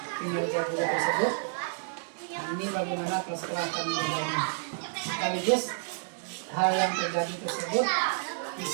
kinerja guru tersebut. Nah, ini bagaimana kepala sekolah akan menjalani. Sekaligus hal yang terjadi tersebut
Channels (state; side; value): silent; left; digital silence